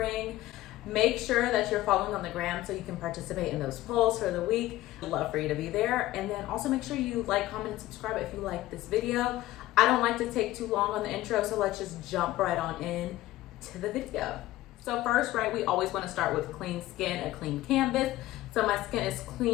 Make sure that you're following on the gram so you can participate in those polls for the week. I'd love for you to be there. And then also make sure you like, comment, and subscribe if you like this video. I don't like to take too long on the intro, so let's just jump right on in to the video. So first, right, we always want to start with clean skin, a clean canvas. So my skin is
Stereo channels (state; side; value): quieter; right; 16.2 dB